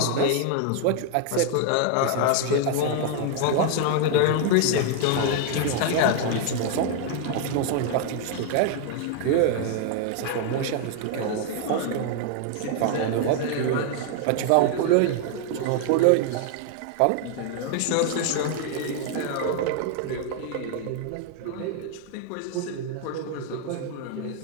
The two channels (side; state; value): both; different; correlation 0.00